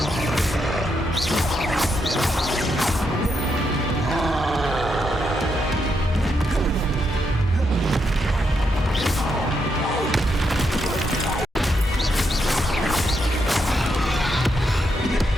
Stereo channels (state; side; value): normal; both; correlation 0.81